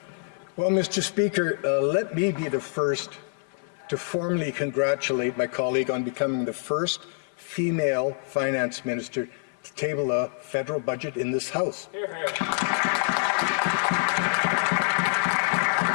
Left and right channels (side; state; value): right; silent; 57 dB below the other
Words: Well, Mr. Speaker, let me be the first to formally congratulate my colleague on becoming the first female finance minister to table a federal budget in this House. Hear, hear.